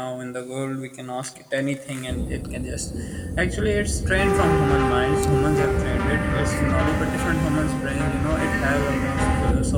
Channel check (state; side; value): identical; both; correlation 1.00